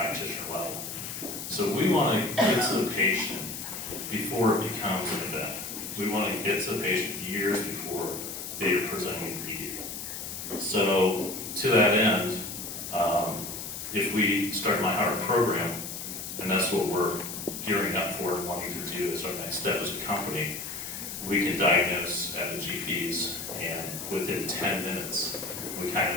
level. So we want to get to the patient before it becomes an event. We want to get to the patient years before they are presenting ED. So to that end, if we start MyHeart program, and that's what we're gearing up for and wanting to do as our next step as a company, we can diagnose at the GPs, and within 10 minutes, we kind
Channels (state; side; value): noise; left; hiss, 7 dB below the sound